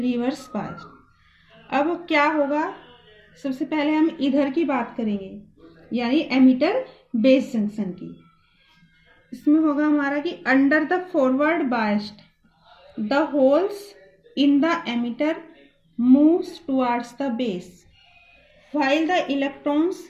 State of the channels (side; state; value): both; identical; correlation 1.00